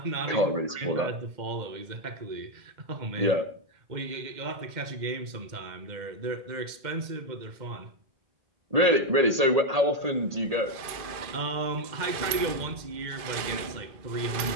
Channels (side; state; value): left; late; 1.8 ms